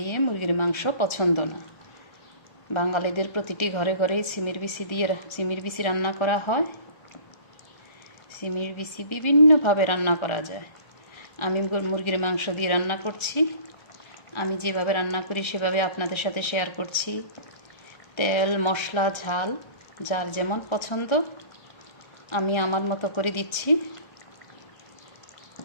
মুরগির মাংস পছন্দ না। বাঙালিদের প্রতিটি ঘরে ঘরেই সিমের বিচি রান্না করা হয়। সিমের বিচি বিভিন্নভাবে রান্না করা যায়। আমি মুরগির মাংস দিয়ে রান্না করছি। আমি যেভাবে রান্না করি সেভাবে আপনাদের সাথে শেয়ার করছি। তেল, মশলা, ঝাল যার যেমন পছন্দ আমি আমার মতো করে দিচ্ছি।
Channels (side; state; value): right; late; 1.3 ms